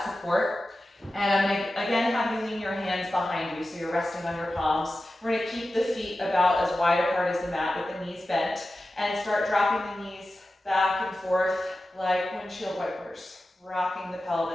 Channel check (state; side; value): normal; both; correlation 0.93